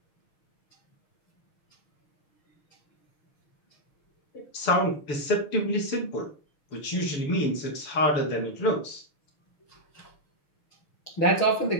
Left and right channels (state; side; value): late; right; 6.9 ms